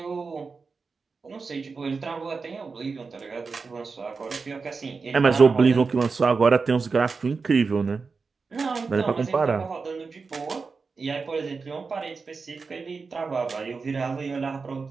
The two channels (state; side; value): quieter; left; 4.6 dB